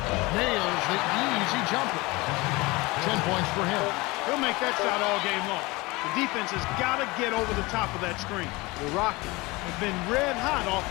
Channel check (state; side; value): quieter; right; 23.0 dB